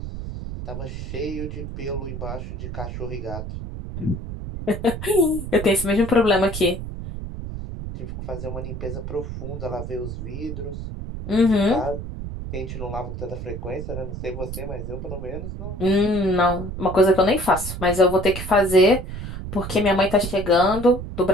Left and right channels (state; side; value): noise; right; rumble, 7 dB below the sound